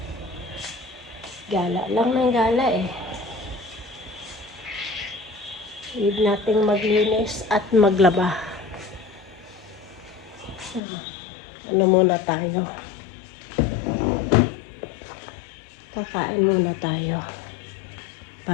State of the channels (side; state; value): right; drops out; at 10.8 s